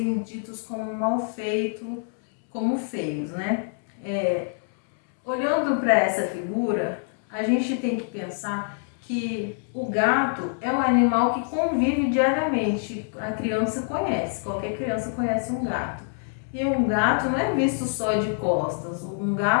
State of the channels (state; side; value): silent; right; 61 dB below the other